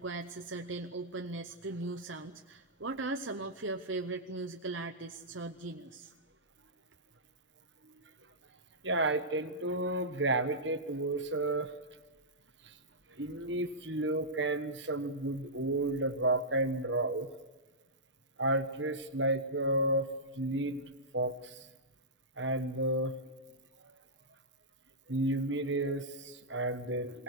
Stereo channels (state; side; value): normal; both; correlation -0.14